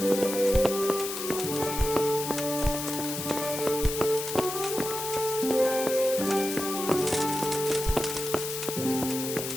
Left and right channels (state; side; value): noise; left; hiss, 6 dB below the sound